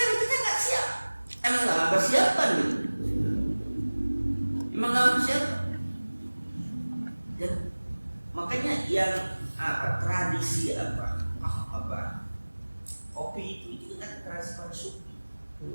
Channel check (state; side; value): inverted; both; correlation -1.00